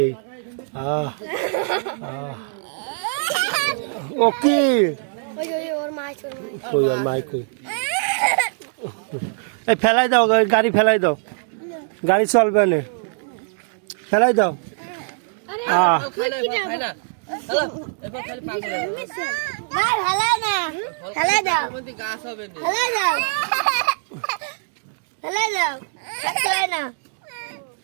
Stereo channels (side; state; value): left; silent; digital silence